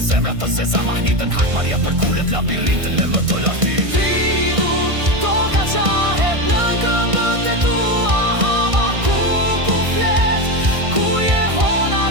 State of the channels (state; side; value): late; left; 1.6 ms